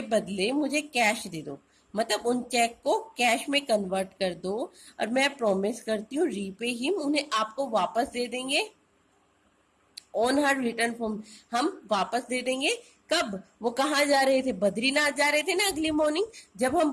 बदले मुझे कैश दे दो. मतलब उन चेक को कैश में कन्वर्ट कर दो, और मैं प्रॉमिस करती हूँ रीपे हिम, उन्हें आपको वापस दे देंगे ऑन हर रिटर्न फॉर्म, हम वापस दे देंगे। कब? वो कहाँ जा रहे थे? बद्रीनाथ जा रहे थे ना अगली मॉर्निंग। जब हम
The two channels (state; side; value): identical; both; correlation 1.00